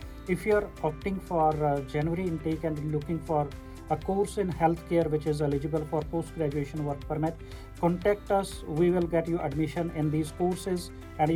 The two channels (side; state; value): both; identical; correlation 1.00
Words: If you are opting for January intake and looking for a course in healthcare which is eligible for post-graduation work permit, contact us. We will get you admission in these courses and